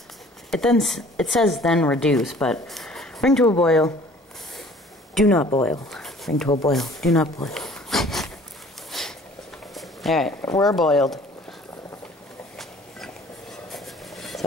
it says then reduce, but bring to a boil, do not boil. Bring to a boil, do not boil. Alright, we're boiled.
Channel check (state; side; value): normal; both; correlation 0.52